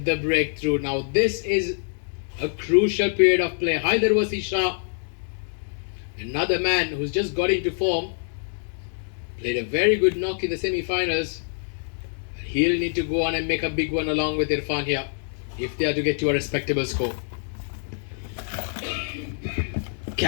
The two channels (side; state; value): right; silent; 62 dB below the other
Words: the breakthrough. Now, this is a crucial period of play. Haider was Shah, another man who's just got into form, played a very good knock in the semi-finals. He'll need to go on and make a big one along with Irfan here if they are to get to a respectable score.